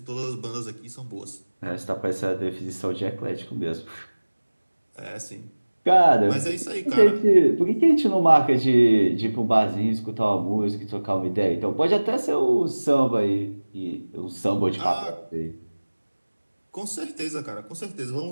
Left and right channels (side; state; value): both; inverted; correlation -1.00